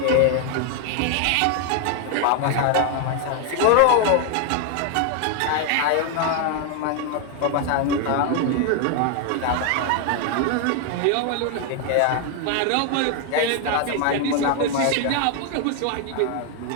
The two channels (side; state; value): both; different; correlation 0.00